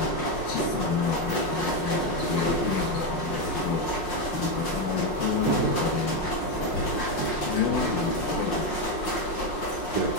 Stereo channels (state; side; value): late; right; 5.6 ms